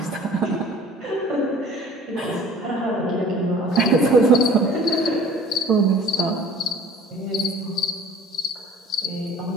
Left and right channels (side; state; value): both; normal; correlation 0.48